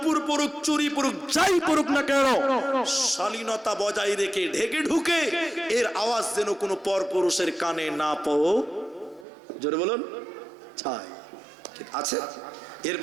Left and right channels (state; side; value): drops out; left; at 9.2 s